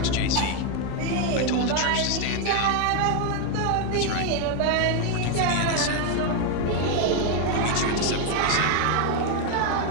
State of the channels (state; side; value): different; both; correlation 0.01